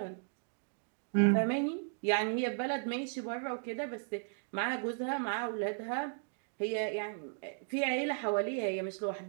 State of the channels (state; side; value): silent; left; digital silence